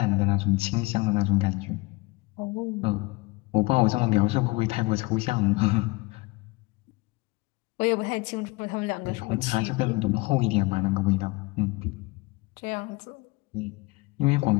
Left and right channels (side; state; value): right; quieter; 23.9 dB